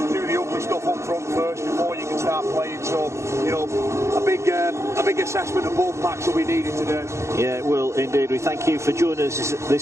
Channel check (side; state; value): left; late; 0.14 ms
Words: the ugly stuff up front first before you can start playing. So a big assessment of both packs will be needed today. Yeah, it will indeed. We thank you for joining us